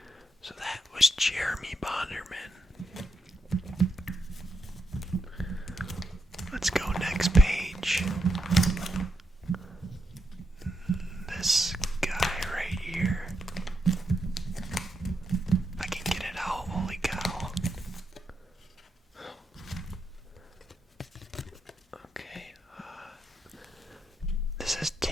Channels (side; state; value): both; normal; correlation 0.82